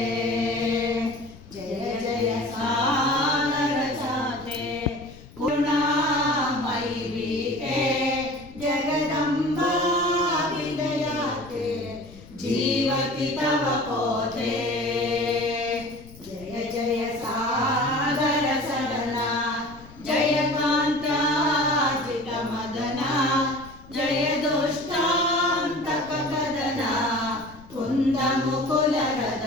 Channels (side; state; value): left; noise; rumble, 20 dB below the sound